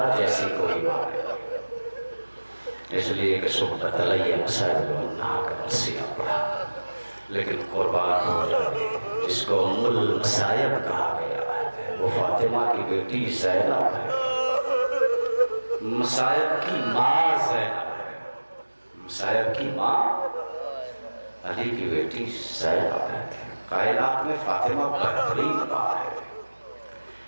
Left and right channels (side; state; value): both; inverted; correlation -1.00